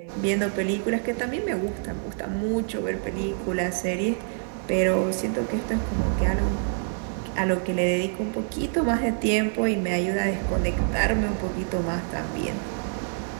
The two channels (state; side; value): silent; left; digital silence